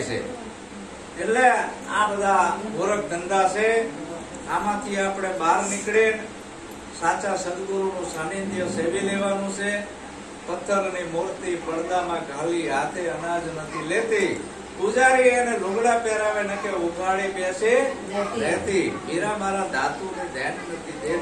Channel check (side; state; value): both; identical; correlation 1.00